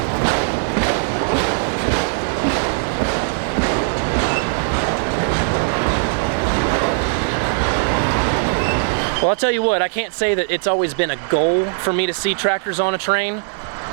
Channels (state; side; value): silent; left; 64 dB below the other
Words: Well, I'll tell you what, I can't say that it's always been a goal for me to see tractors on a train.